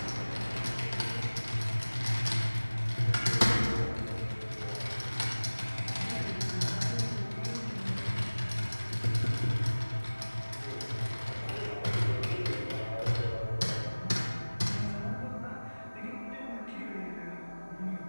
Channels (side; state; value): both; inverted; correlation -1.00